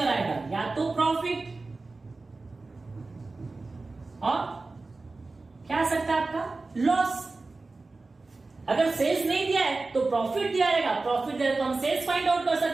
आएगा, या तो प्रॉफिट और क्या आ सकता है आपका, लॉस। अगर सेल्स नहीं दिया है तो प्रॉफिट दिया रहेगा, प्रॉफिट दिया तो हम सेल्स फाइंड आउट कर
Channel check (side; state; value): left; quieter; 3.6 dB